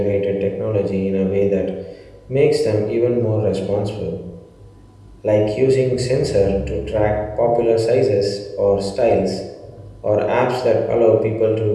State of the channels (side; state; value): both; identical; correlation 1.00